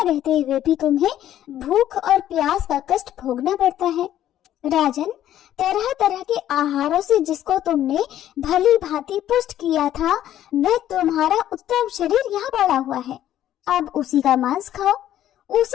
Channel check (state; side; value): quieter; right; 11.9 dB